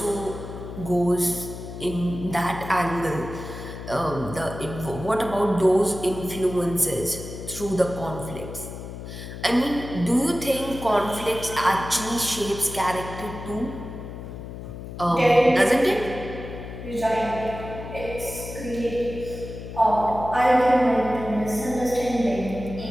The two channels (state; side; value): noise; left; hum, 10 dB below the sound